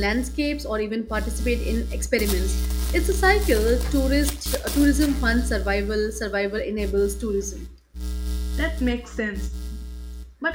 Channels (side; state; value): both; identical; correlation 1.00